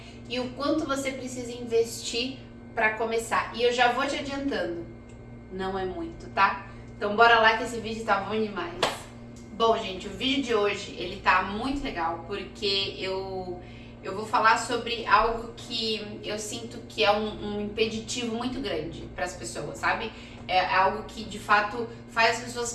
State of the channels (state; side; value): identical; both; correlation 1.00